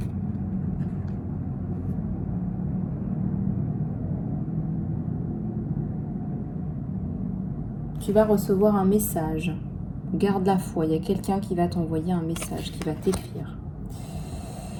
Tu vas recevoir un message. Garde la foi. Il y a quelqu'un qui va t'envoyer un message, qui va t'écrire.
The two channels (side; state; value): both; identical; correlation 1.00